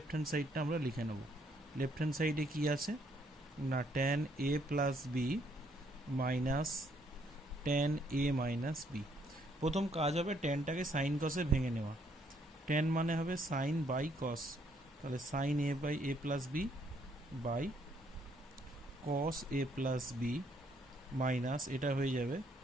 হ্যান্ড সাইডটা আমরা লিখে নেব। লেফট হ্যান্ড সাইডে কী আছে না, tan a plus B minus tan a minus B. প্রথম কাজ হবে ট্যানটাকে সাইন কসে ভেঙে নেওয়া। ট্যান মানে হবে সাইন বাই কস, তাহলে sine A by A plus B by cos A plus B minus এটা হয়ে যাবে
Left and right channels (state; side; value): normal; both; correlation 0.69